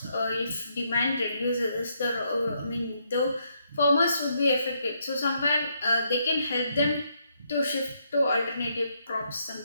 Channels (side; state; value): both; inverted; correlation -0.75